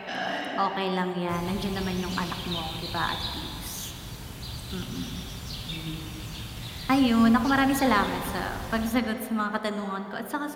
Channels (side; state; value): both; identical; correlation 1.00